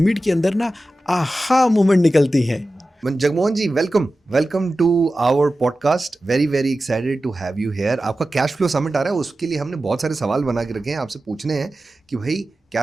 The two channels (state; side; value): normal; both; correlation 0.94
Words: के अंदर ना आहा मोमेंट निकलती है। Jagmohan ji, welcome to our podcast. Very very excited to have you here. आपका कैश फ्लो समिट आ रहा है, उसके लिए हमने बहुत सारे सवाल बना के रखे हैं, आपसे पूछने हैं कि भाई